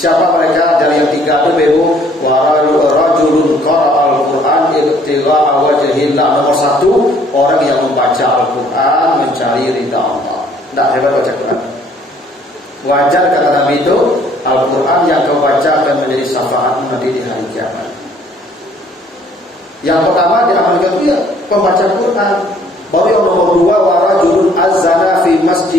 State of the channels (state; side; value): normal; both; correlation 0.60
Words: mereka? Dari yang 3 itu Ibu, wa rajulun qara'al Qur'an ibtigha'a wajhillah. Nomor 1, orang yang membaca Al-Qur'an mencari ridha Allah. Tidak hebat baca Quran. Wajar kata Nabi itu, Al-Qur'an yang kau baca akan menjadi syafaat nanti di hari kiamat. Yang pertama diamalkan itu ya pembaca Quran. Baru yang nomor 2, wa rajulun azana fi